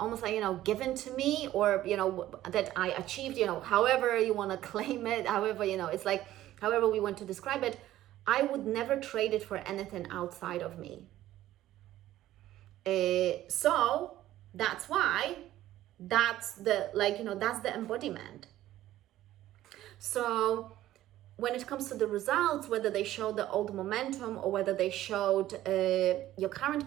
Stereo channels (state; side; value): quieter; left; 14.1 dB